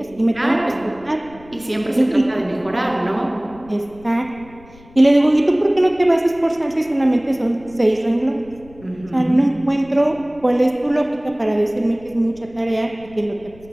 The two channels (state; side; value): noise; left; rumble, 24 dB below the sound